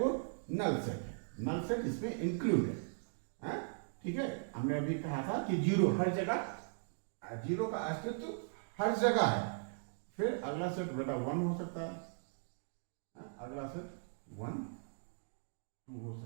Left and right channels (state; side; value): silent; left; digital silence